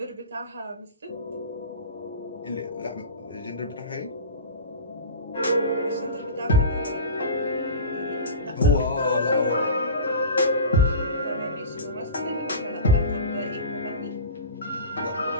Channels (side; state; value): both; inverted; correlation -0.31